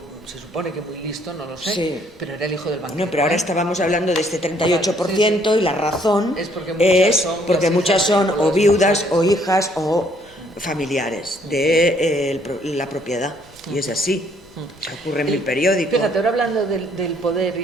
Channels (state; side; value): noise; right; rumble, 28 dB below the sound